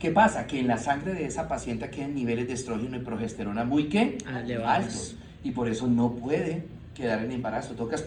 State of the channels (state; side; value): identical; both; correlation 1.00